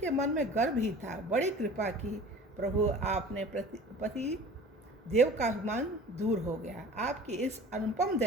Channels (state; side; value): normal; both; correlation 0.43